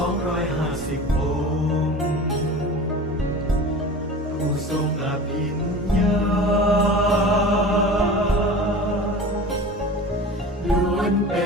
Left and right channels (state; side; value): normal; both; correlation 0.36